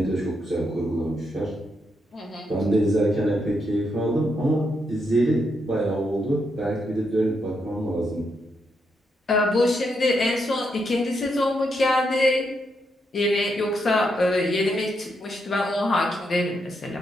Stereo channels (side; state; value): both; normal; correlation 0.81